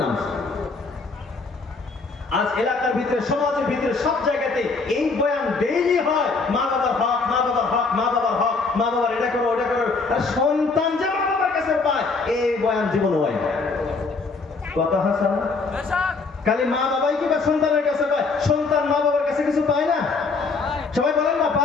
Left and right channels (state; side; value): quieter; right; 4.2 dB